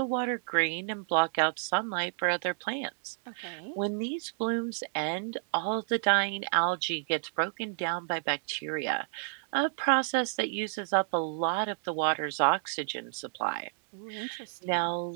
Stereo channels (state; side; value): silent; left; digital silence